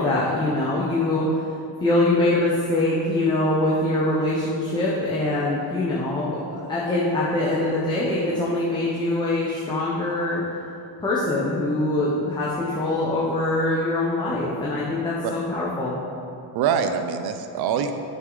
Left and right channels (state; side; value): normal; both; correlation 0.29